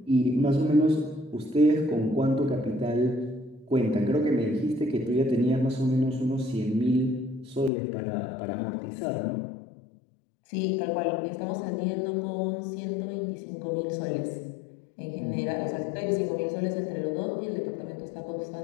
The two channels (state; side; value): drops out; right; at 7.7 s